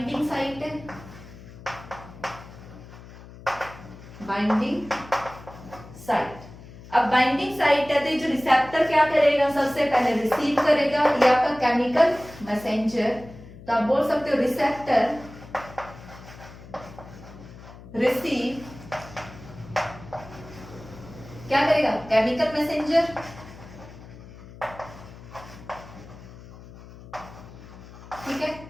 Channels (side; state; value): left; noise; hum, 17 dB below the sound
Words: साइट है, बाइंडिंग साइट। अब बाइंडिंग साइट है तो ये जो रिसेप्टर क्या करेगा, सबसे पहले रिसीव करेगा, ये आपका केमिकल मैसेंजर। तो आप बोल सकते हो रिसेप्टर रिसीव क्या करेगा, केमिकल मैसेंजर। ठीक है,